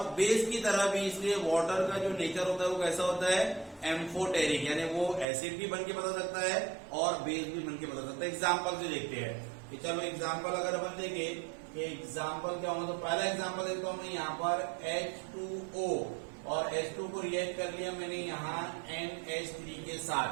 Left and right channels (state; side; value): drops out; left; at 5.2 s